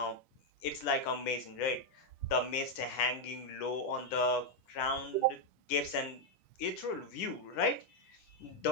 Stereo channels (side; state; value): right; late; 10 ms